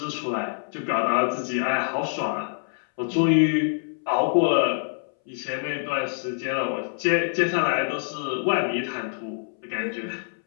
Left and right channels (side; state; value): right; silent; 61 dB below the other